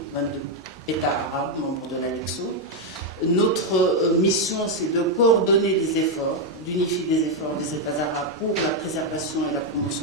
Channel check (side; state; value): both; normal; correlation 0.02